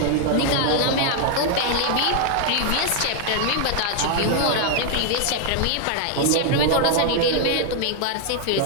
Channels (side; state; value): both; different; correlation 0.00